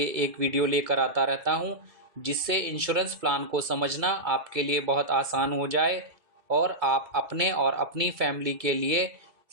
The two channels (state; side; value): late; left; 2.3 ms